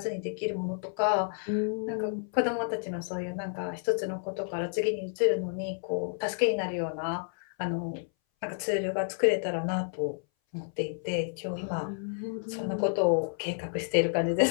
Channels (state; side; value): silent; right; 58 dB below the other